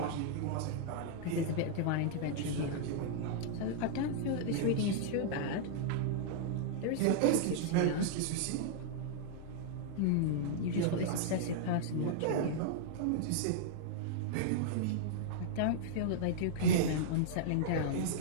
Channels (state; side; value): different; both; correlation -0.01